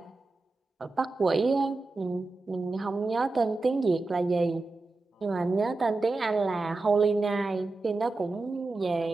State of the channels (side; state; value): left; quieter; 3.3 dB